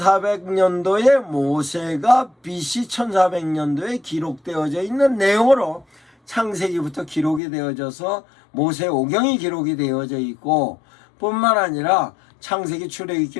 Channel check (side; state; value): right; drops out; at 7.4 s